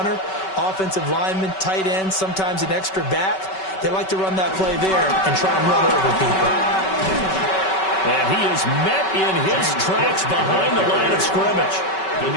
offensive linemen, tight ends, sometimes an extra back, they like to run that play there and try and run over people. And he is met in his tracks behind the line of scrimmage.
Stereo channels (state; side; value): late; right; 5.3 ms